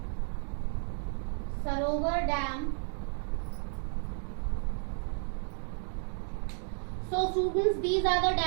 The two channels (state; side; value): silent; left; 56 dB below the other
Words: Sarovar Dam. So students, these are the